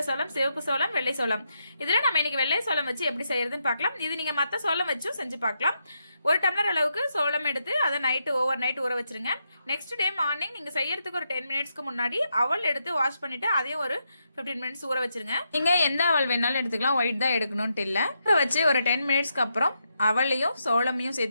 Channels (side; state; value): both; inverted; correlation -0.82